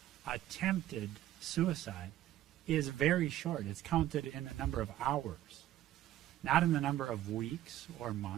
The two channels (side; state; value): left; quieter; 13.4 dB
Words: attempted suicide is very short. It's counted in the number of hours, not in the number of weeks or